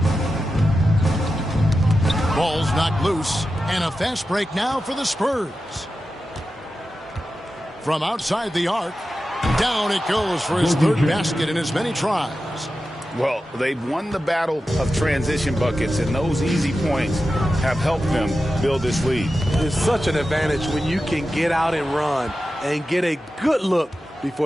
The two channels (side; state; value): both; normal; correlation 0.92